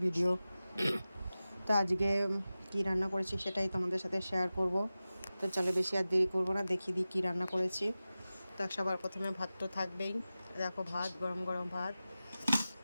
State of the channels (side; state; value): both; inverted; correlation -0.95